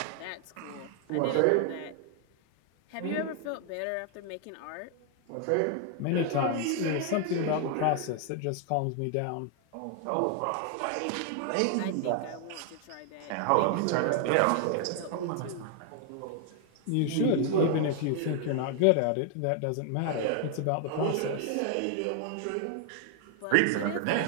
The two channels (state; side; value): different; both; correlation 0.00